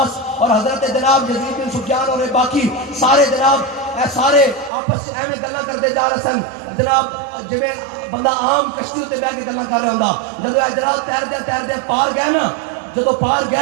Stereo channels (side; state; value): left; drops out; at 4.7 s